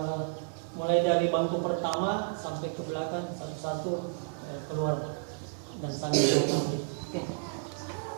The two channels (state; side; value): silent; left; digital silence